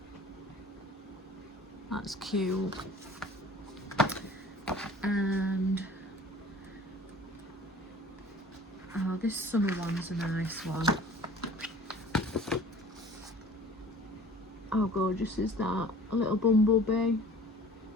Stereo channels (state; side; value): normal; both; correlation 0.46